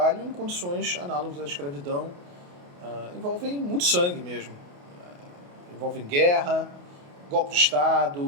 em condições análogas à escravidão, envolvem muito sangue mesmo, envolvem guerra, golpe de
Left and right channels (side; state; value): left; late; 28 ms